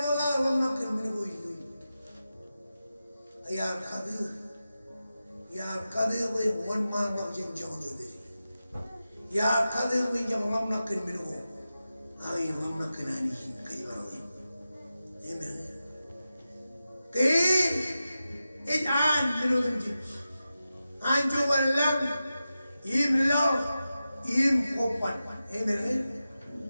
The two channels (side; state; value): both; inverted; correlation -0.92